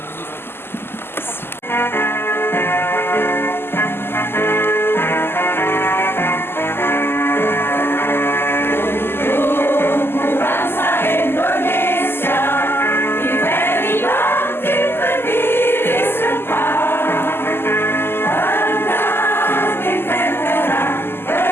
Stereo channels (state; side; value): late; right; 0.11 ms